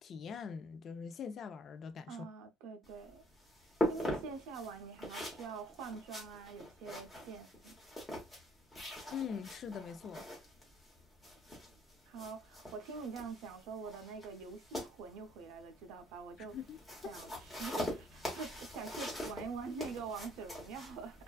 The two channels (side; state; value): both; normal; correlation 0.62